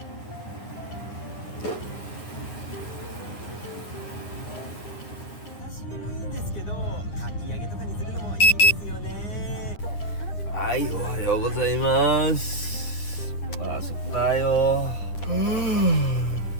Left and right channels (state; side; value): late; right; 9.7 ms